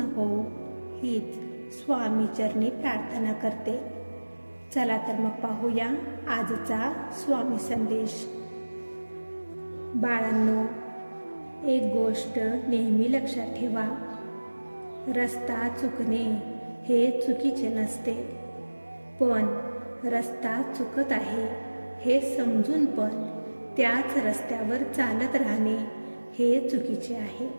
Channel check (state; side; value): inverted; both; correlation -1.00